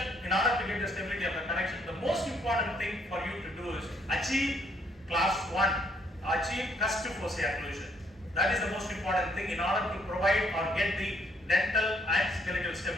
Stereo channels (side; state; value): both; normal; correlation 0.68